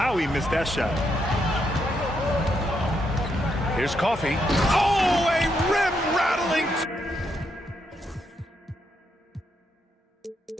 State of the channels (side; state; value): both; normal; correlation 0.79